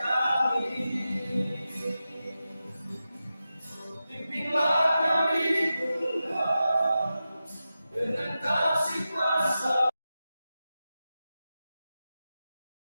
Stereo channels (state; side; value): inverted; both; correlation -0.92